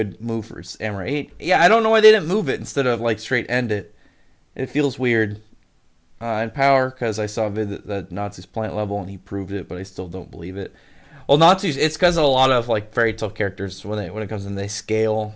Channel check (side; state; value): both; identical; correlation 1.00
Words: move for Samurai 8. Yeah, I don't know why they didn't move it instead of like straight end it. It feels weird. And Power, because I saw a vid that Natsu's plant level and he proved it, but I still don't believe it. Well, Natsu's, it's because a lot of like fairy tale characters when it comes in, they scale